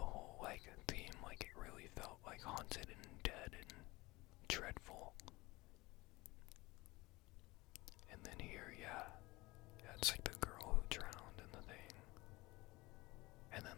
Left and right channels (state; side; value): quieter; right; 21.6 dB